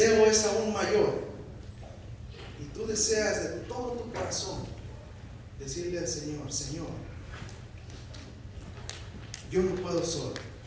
es aún mayor y tú deseas de todo tu corazón decirle al Señor: Señor, yo no puedo solo.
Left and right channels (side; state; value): both; identical; correlation 1.00